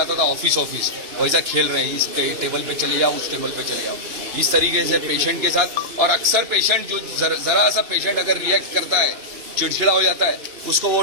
था ऑफिस वैसा खेल रहे हैं। इस टेबल पे चले जाओ, उस टेबल पे चले जाओ, इस तरीके से पेशेंट के साथ। और अक्सर पेशेंट जो जरा सा पेशेंट अगर रिएक्ट करता है, चिड़चिड़ा हो जाता है, उसको वो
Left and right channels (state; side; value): late; left; 2.9 ms